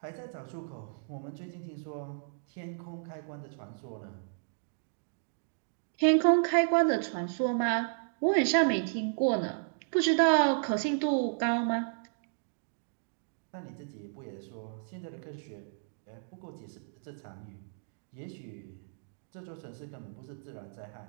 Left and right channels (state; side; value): silent; left; digital silence